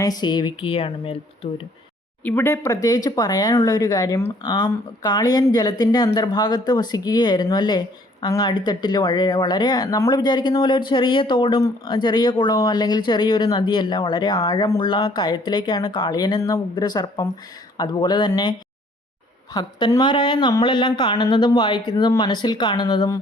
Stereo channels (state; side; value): normal; both; correlation 0.60